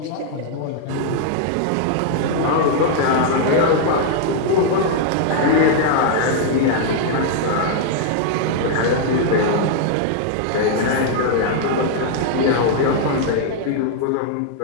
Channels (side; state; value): both; different; correlation -0.01